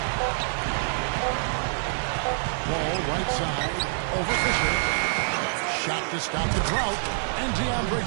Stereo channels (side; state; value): left; silent; digital silence